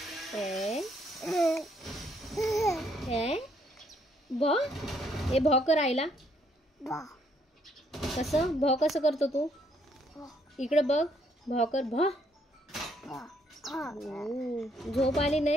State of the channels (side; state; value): both; normal; correlation 0.70